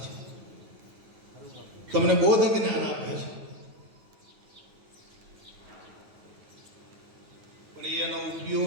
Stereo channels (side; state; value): left; late; 9.3 ms